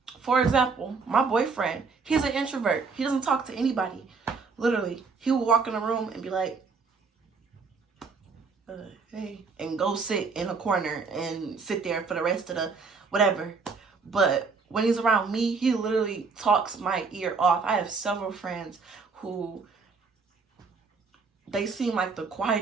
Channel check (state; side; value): quieter; left; 4.8 dB